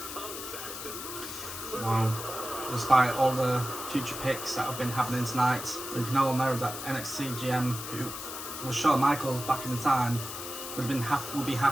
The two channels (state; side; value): noise; left; hiss, 8 dB below the sound